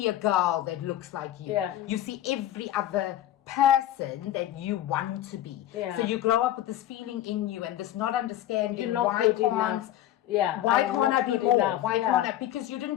a girl that looks like you. You see every other person that you want to be. So you grow up with this feeling in you and this not understanding You're not good enough. Why can't I be more? Why can't I? Because you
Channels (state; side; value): quieter; right; 12.7 dB